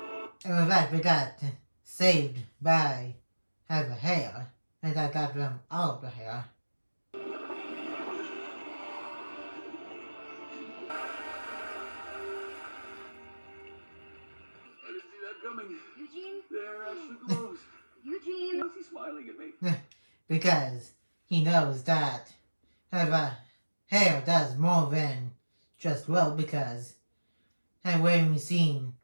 And with that, we got saved by the hair, and I got them all of the hair. I didn't see that coming. Eugene? There she glows. Eugene? Why is he smiling at me? Because he knows that the hair does more than just glow, because when we seen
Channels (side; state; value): both; inverted; correlation -1.00